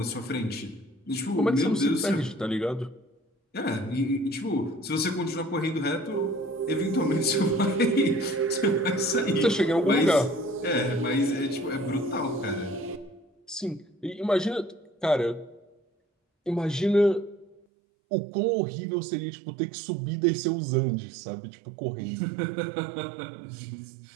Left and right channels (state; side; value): drops out; left; at 17.6 s